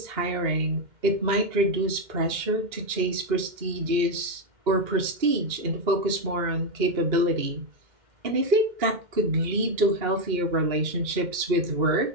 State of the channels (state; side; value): late; left; 2.1 ms